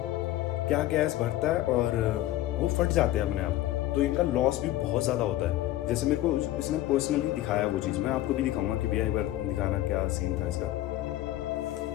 क्या गैस भरता है और वो फट जाते हैं अपने आप। तो इनका लॉस भी बहुत ज़्यादा होता है। जैसे मेरे को इसने पर्सनली दिखाया वो चीज़, मैं आपको भी दिखाऊंगा कि भैया एक बार दिखाना क्या सीन था इसका।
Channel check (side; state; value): right; quieter; 14.9 dB